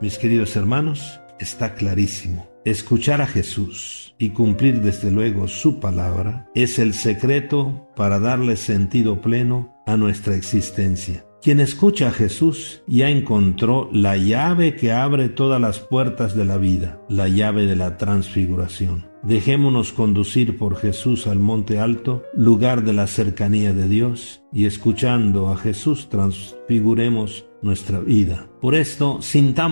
Mis queridos hermanos, está clarísimo. Escuchar a Jesús y cumplir desde luego su palabra es el secreto para darle sentido pleno a nuestra existencia. Quien escucha a Jesús ya encontró la llave que abre todas las puertas de la vida, la llave de la transfiguración. Dejémonos conducir por Jesús al monte alto, lugar de la cercanía de Dios, y escuchando a Jesús transfiguremos nuestra vida. Por esto,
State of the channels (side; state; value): both; inverted; correlation -1.00